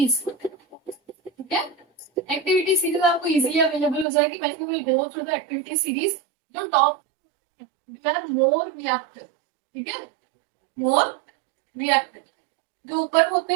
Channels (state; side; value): drops out; left; at 4.0 s